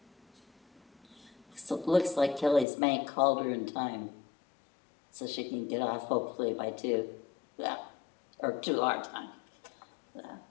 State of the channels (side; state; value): right; drops out; at 2.7 s